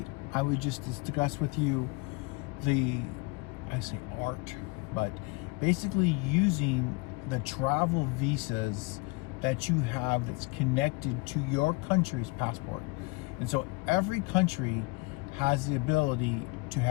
I would just discuss with you I say art, but basically using the travel visas that you have that's connected to your country's passport. And so every country has the ability to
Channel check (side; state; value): right; quieter; 25.5 dB